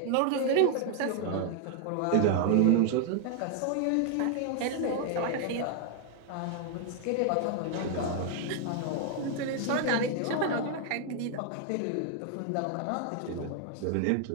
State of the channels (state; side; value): different; both; correlation 0.00